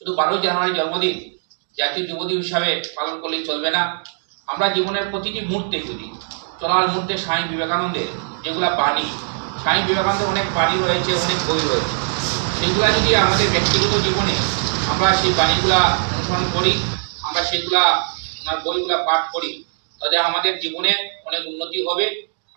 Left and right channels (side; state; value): left; silent; digital silence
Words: 12ই জানুয়ারি জন্মদিন জাতীয় যুব দিবস হিসাবে পালন করলেই চলবে না। আমরা জীবনের প্রতিটি মুহূর্তে, যদি চলার মুহূর্তে স্বামী বিবেকানন্দের যেগুলা বাণী, স্বামী বিবেকানন্দের অনেক বাণী রয়েছে, অনেক বই রয়েছে, সেইগুলা যদি আমাদের ব্যক্তিগত জীবনে আমরা সেই বাণীগুলা অনুসরণ করি, আমরা সেইগুলা ওনার বইগুলা পাঠ করি, তাহলে আমাদের জীবনে অনেক উন্নতি হবে,